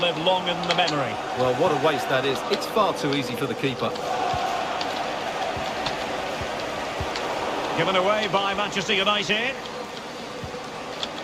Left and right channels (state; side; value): identical; both; correlation 1.00